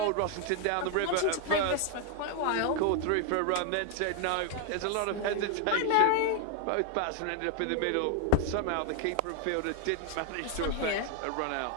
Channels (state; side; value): different; both; correlation 0.01